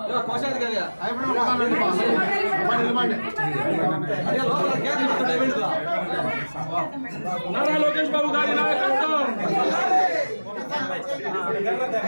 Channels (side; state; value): both; inverted; correlation -1.00